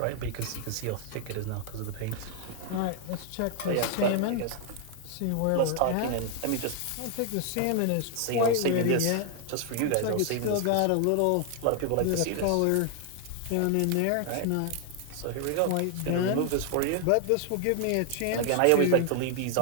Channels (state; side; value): different; both; correlation 0.00